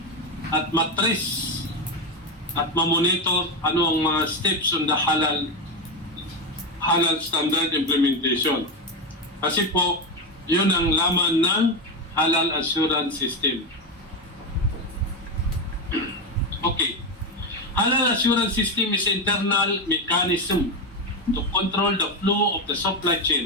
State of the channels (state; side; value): normal; both; correlation 0.11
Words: at ma-trace at ma-monitor ano ang mga steps on the halal standard implementation. Kasi po, yun ang laman ng halal assurance system. Okay. Halal assurance system is internal mechanism to control the flow of the supply